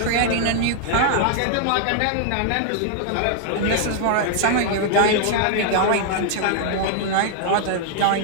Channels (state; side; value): different; both; correlation -0.01